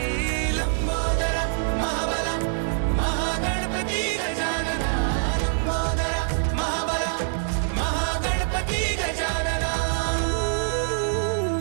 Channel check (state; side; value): silent; left; 59 dB below the other